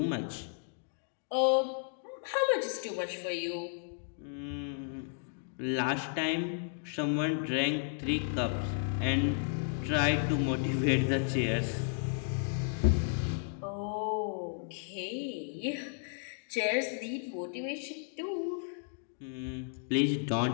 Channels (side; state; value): right; silent; digital silence